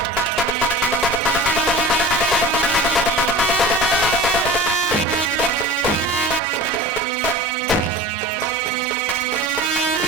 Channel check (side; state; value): both; normal; correlation 0.37